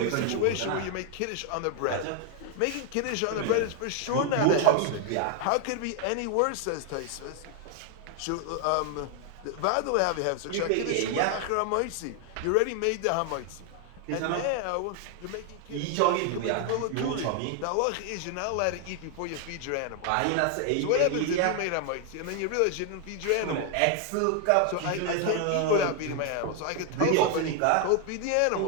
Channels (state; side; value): different; both; correlation 0.00